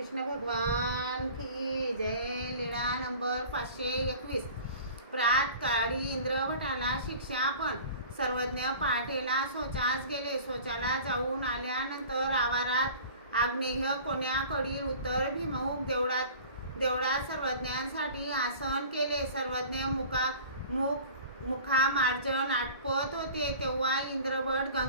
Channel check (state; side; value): inverted; both; correlation -0.43